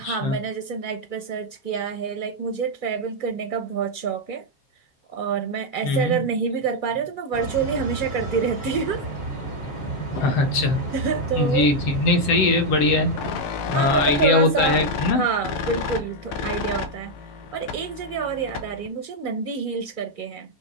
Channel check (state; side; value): late; right; 7.8 ms